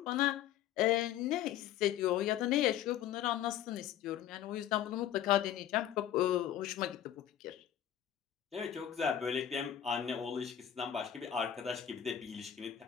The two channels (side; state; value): right; quieter; 10.7 dB